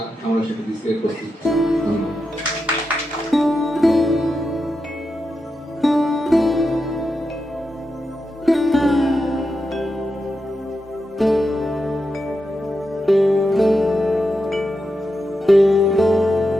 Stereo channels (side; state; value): both; normal; correlation 0.88